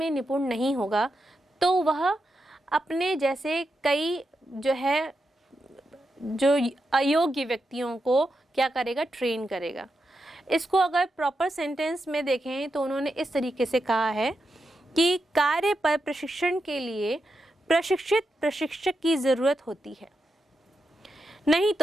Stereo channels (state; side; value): normal; both; correlation 0.86